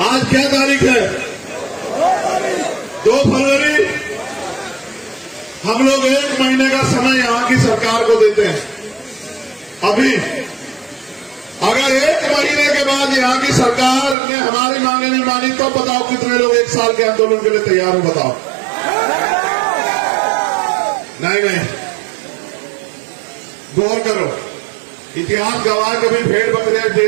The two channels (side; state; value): left; drops out; at 14.2 s